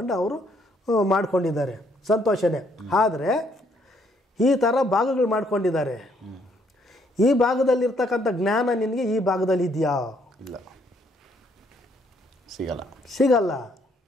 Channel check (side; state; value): both; normal; correlation 0.69